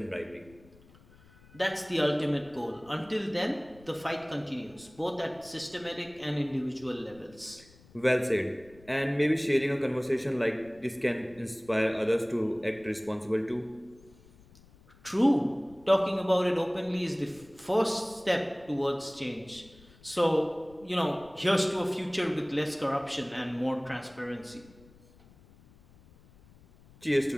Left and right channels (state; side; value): noise; left; rumble, 25 dB below the sound